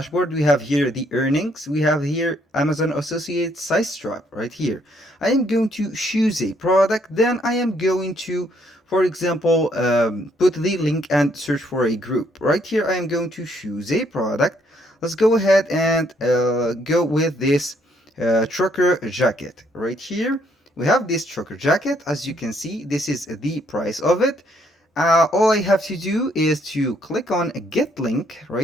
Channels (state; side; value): normal; both; correlation 0.69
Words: we have here the earnings, we have here Amazon associate size trap. Right here I am going to choose a product, then I am going to, for example, put the link and search for a group. Right here I am going to choose a product. Let's go ahead and go with this trucker jacket. Right here we have this trucker jacket. As you can see, this is the price of it. All I have to do is to click on get link.